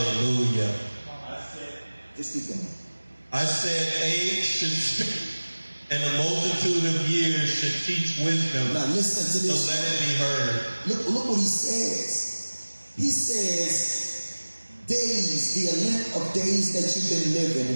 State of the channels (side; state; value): both; inverted; correlation -1.00